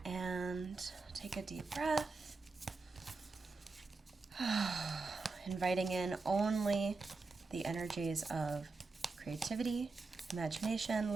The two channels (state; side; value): quieter; left; 4.0 dB